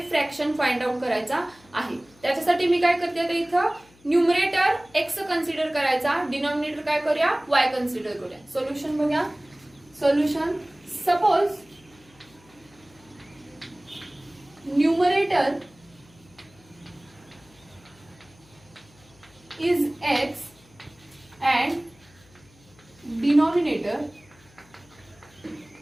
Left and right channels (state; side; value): noise; left; hum, 28 dB below the sound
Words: फ्रॅक्शन फाइंड आउट करायचा आहे. त्याच्यासाठी मी काय करते आता इथं न्यूमरेटर x कन्सिडर करायचा, डिनॉमिनेटर काय करूया y कन्सिडर करूया. सोल्युशन बघा, solution suppose numerator is x and denominator